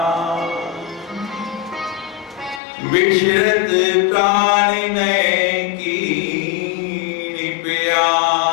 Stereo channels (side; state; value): right; drops out; at 2.6 s